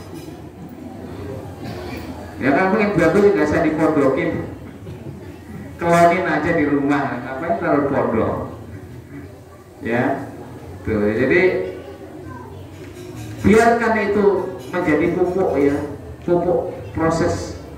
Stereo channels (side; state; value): both; identical; correlation 1.00